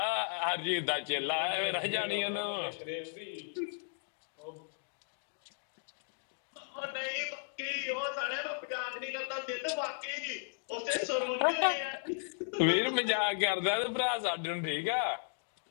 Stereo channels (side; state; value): right; silent; digital silence